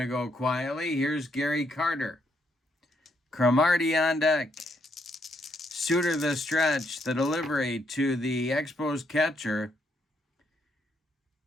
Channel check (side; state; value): both; normal; correlation 0.75